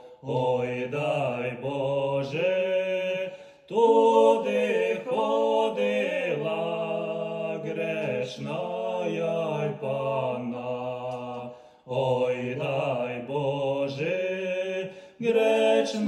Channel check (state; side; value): identical; both; correlation 1.00